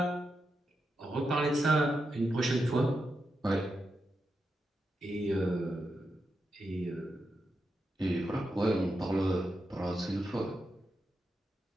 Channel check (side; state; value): both; normal; correlation 0.86